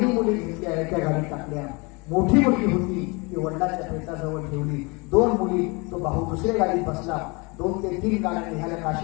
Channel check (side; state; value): right; quieter; 28.4 dB